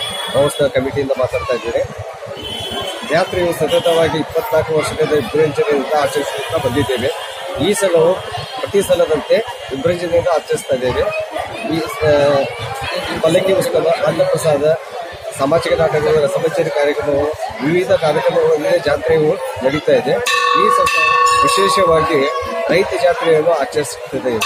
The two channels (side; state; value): both; identical; correlation 1.00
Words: ಮಹೋತ್ಸವ ಕಮಿಟಿಯಿಂದ ಮಾತಾಡ್ತಾ ಇದ್ದೇನೆ. ಜಾತ್ರೆಯು ಸತತವಾಗಿ 24 ವರ್ಷದಿಂದ ವಿಜೃಂಭಣೆಯಿಂದ ಆಚರಿಸುತ್ತಾ ಬಂದಿದ್ದೇವೆ. ಈ ಸಲವು ಪ್ರತಿ ಸಲದಂತೆ ವಿಜೃಂಭಣೆಯಿಂದ ಆಚರಿಸ್ತಾ ಇದ್ದೇವೆ. ಈ ಪಲ್ಲಕ್ಕಿ ಉತ್ಸವ, ಅನ್ನಪ್ರಸಾದ, ಸಾಮಾಜಿಕ ನಾಟಕಗಳು, ರಸಮಂಜರಿ ಕಾರ್ಯಕ್ರಮವು, ವಿವಿಧ ಕಾರ್ಯಕ್ರಮಗಳಲ್ಲಿ ಜಾತ್ರೆಯು ನಡೀತಾ ಇದೆ. ಈ ಸಲ ವಿಶೇಷವಾಗಿ ರೈತ ಜಾತ್ರೆಯನ್ನು ಆಚರಿಸುತ್ತದೆ.